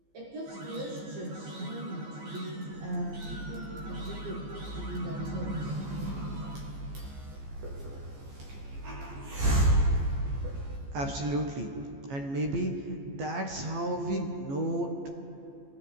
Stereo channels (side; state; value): left; late; 14 ms